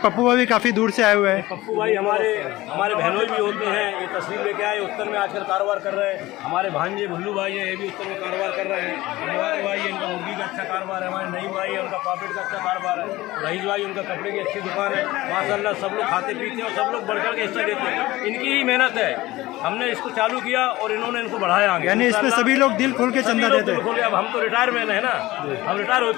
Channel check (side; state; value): right; quieter; 18.2 dB